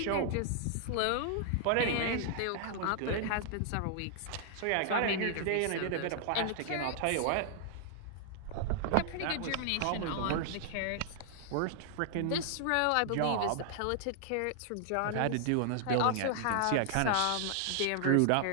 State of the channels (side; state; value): both; different; correlation -0.01